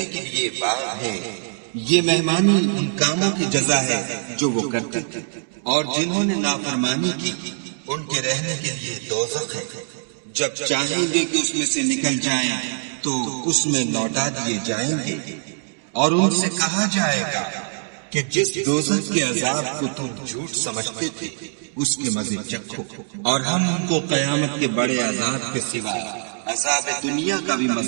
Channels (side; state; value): left; silent; 63 dB below the other